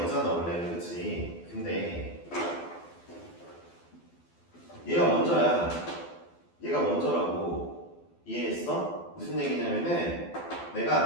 원래는. 그치? 근데 얘가 먼저야. 얘가 먼저라고. 이해했어? 무슨 얘기냐면은 내가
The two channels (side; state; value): right; late; 12 ms